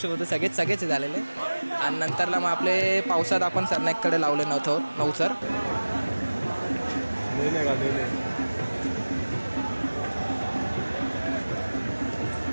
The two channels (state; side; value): inverted; both; correlation -1.00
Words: होतो, सगळेच झालेले. आणि नंतरला मग आपले पावसात आपण सरनाईककडे लावले नवसर.